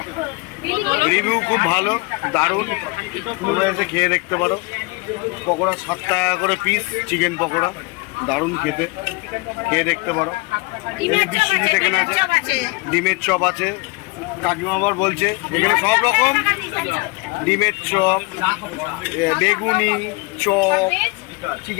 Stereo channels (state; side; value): quieter; right; 27.4 dB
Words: রিভিউ খুব ভালো, দারুণ, তোমরা এসে খেয়ে দেখতে পারো। পকোড়া 7 টাকা করে পিস, চিকেন পকোড়া দারুণ খেতে, খেয়ে দেখতে পারো। এই যে বিশ্বজিৎ এখানে আছে, ডিমের চপ আছে। কাকিমা আবার বলছে এখানে সব রকম ডিমের চপ, বেগুনি চপ,